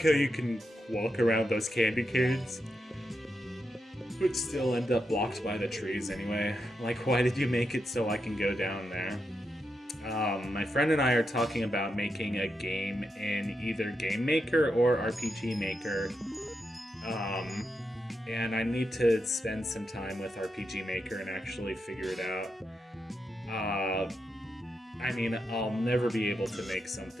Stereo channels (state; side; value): normal; both; correlation 0.85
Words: how you can walk around those candy canes, but still end up blocked by the trees anyway. Like, why did you make it so I can go down there? My friend and I are talking about making a game in either Game Maker or RPG Maker. And I need to spend some time with RPG Maker and actually figure it out. I mean, I'll never be able to make